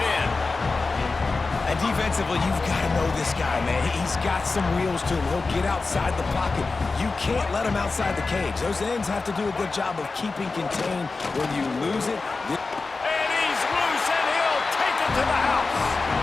in. And defensively, you've got to know this guy, man. He's got some wheels to him. He'll get outside the pocket. You can't let him outside the cage. Those ends have to do a good job of keeping contained when you lose it. And he's loose, and he'll take it to the house.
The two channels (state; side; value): quieter; right; 3.9 dB